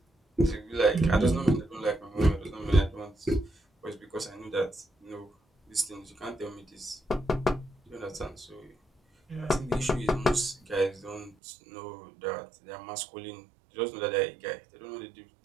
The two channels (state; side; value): drops out; left; at 11.4 s